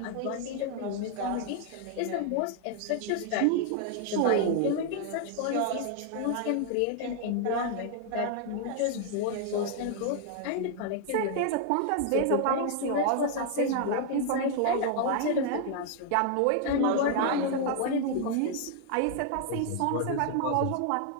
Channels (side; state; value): both; different; correlation 0.00